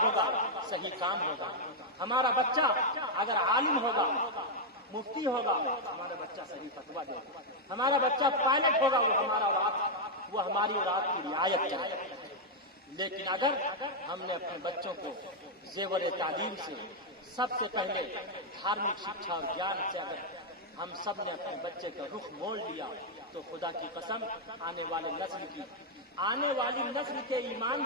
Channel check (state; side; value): normal; both; correlation -0.02